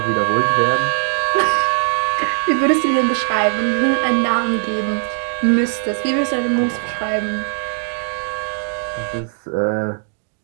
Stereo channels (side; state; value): left; silent; digital silence